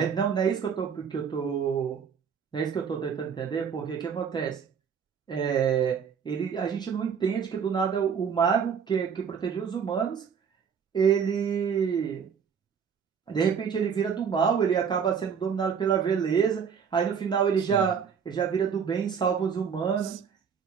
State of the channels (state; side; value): quieter; left; 6.9 dB